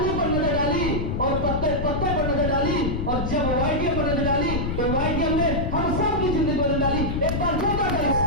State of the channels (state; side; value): noise; left; rumble, 1 dB below the sound